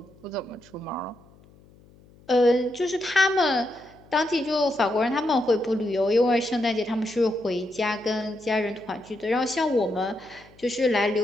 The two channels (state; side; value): noise; left; hum, 27 dB below the sound